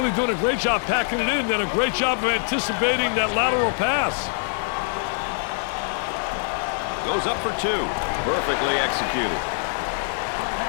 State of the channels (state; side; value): silent; right; 63 dB below the other